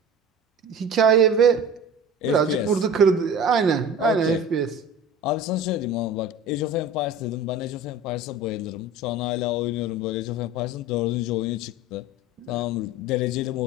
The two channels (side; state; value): both; normal; correlation 0.37